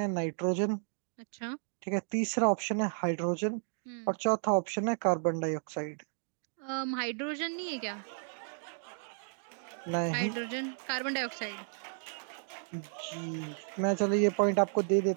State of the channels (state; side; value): silent; left; 56 dB below the other